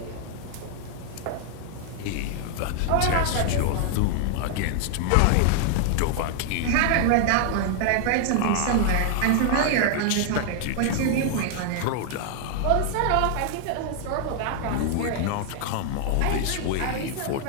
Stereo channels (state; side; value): different; both; correlation 0.00